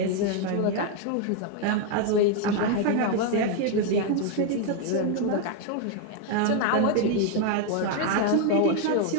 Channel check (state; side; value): different; both; correlation 0.01